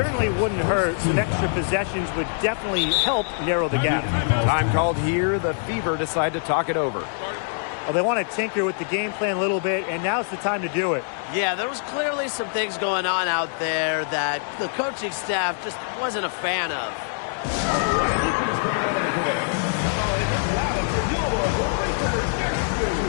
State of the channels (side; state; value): right; silent; 63 dB below the other